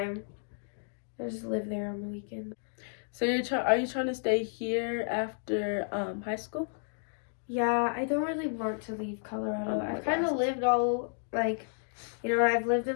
I just live there on the weekend. So are you trying to stay here after high school? Yeah, I don't really want to leave Colorado. Oh, I've kind of lived all, like, you know, I've lived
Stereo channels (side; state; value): right; silent; digital silence